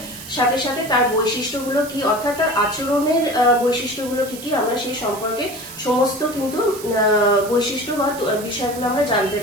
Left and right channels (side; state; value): right; noise; hiss, 14 dB below the sound